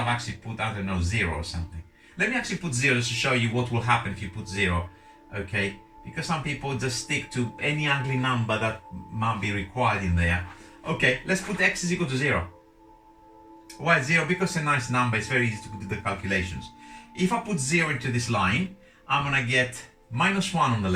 actually put, I don't know, 0 or something. Let me actually put 0 just to show you what will happen if you put 0. Okay, because some people just stick to any ugly number that might be required in there. Okay, let's put x is equal to 0. Why 0? Because it's a nice number, it's very easy to do the calculations. If I put 0 into this line, I'm gonna get minus 1 on the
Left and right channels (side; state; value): both; identical; correlation 1.00